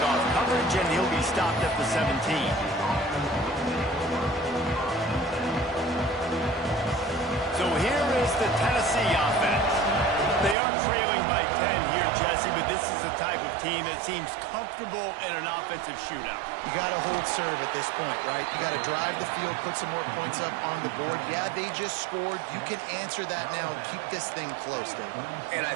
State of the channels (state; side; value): drops out; left; at 10.6 s